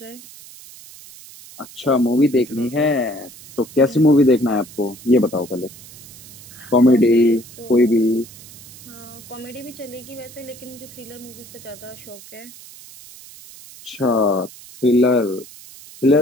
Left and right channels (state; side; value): noise; right; hiss, 19 dB below the sound